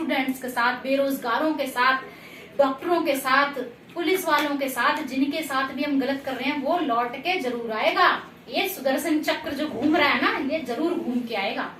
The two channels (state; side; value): identical; both; correlation 1.00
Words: के साथ, बेरोजगारों के साथ, डॉक्टरों के साथ, पुलिस वालों के साथ, जिनके साथ भी हम गलत कर रहे हैं वो लौट के जरूर आएगा। ये सुदर्शन चक्र जो घूम रहा है ना, ये जरूर घूम के आएगा।